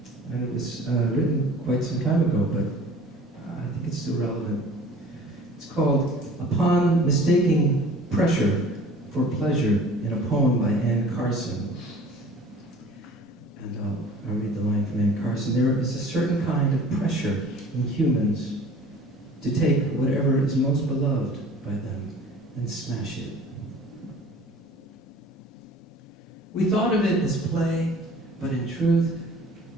was written quite some time ago, but I think it's still relevant. It's called Upon Mistaking Pressure for Pleasure, in a poem by Anne Carson. And I'll read the line from Anne Carson. There is a certain kind of pressure in humans to take whatever is most beloved by them and smash it. We thought of it as play, but in truth,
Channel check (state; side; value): normal; both; correlation 0.47